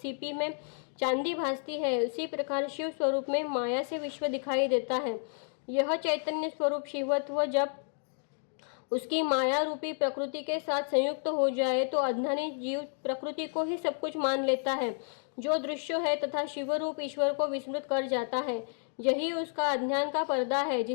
में चांदी भासती है, उसी प्रकार शिव स्वरूप में माया से विश्व दिखाई देता है। यह चैतन्य स्वरूप शिवत्व जब उसकी माया रूपी प्रकृति के साथ संयुक्त हो जाए तो अज्ञानी जीव प्रकृति को ही सब कुछ मान लेता है, जो दृश्य है, तथा शिवरूप ईश्वर को विस्मृत कर जाता है। यही उसका अज्ञान का पर्दा है,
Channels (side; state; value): right; silent; 57 dB below the other